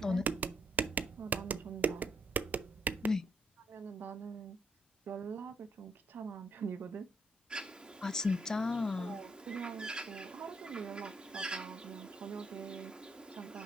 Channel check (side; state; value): both; normal; correlation 0.73